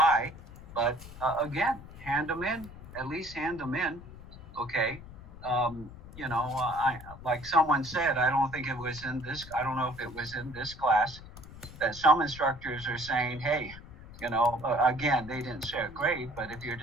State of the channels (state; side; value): noise; left; rumble, 16 dB below the sound